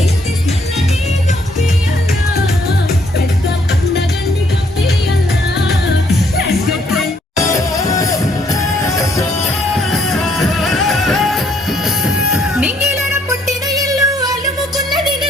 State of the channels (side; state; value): both; normal; correlation 0.68